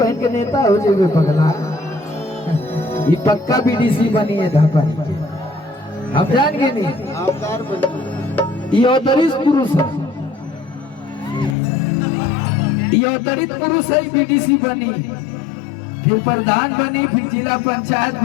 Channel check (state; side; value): drops out; right; at 11.6 s